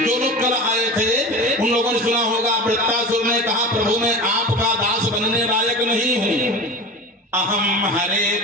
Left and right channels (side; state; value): both; normal; correlation 0.30